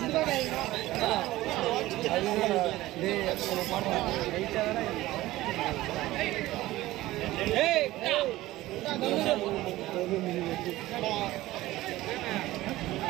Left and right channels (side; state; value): left; quieter; 17.0 dB